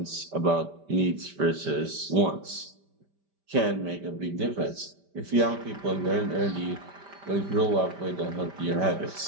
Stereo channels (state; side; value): late; left; 5.1 ms